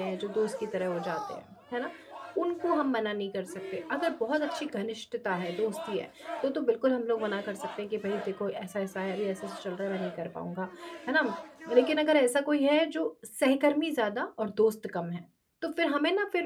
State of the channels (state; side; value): identical; both; correlation 1.00